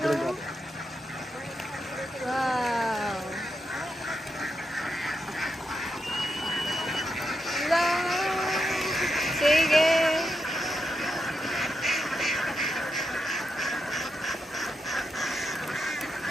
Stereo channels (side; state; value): both; normal; correlation 0.84